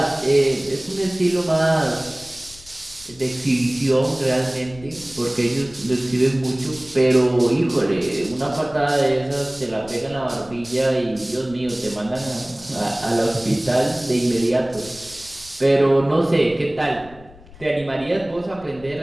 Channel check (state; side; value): noise; left; rumble, 21 dB below the sound